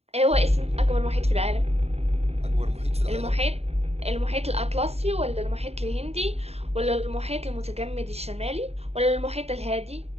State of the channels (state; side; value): late; left; 0.30 ms